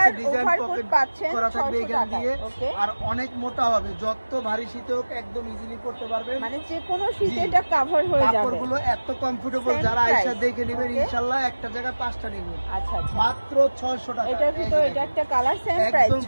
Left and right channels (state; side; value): inverted; both; correlation -1.00